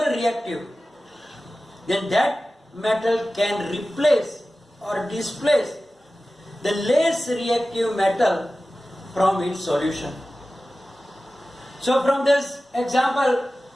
reactive, then that metal can replace or displace the less reactive metal from its solution. So from this example,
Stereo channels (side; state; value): both; normal; correlation 0.95